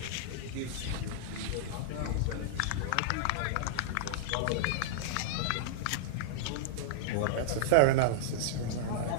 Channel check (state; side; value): different; both; correlation -0.01